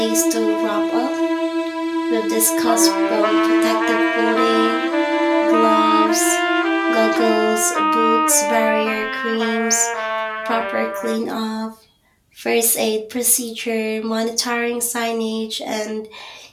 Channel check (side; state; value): both; identical; correlation 1.00